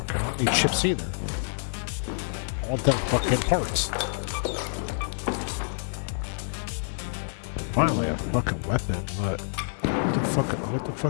I don't need chips either. I want them fucking parts. Finally, a fucking weapon, but what the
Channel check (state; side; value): silent; right; digital silence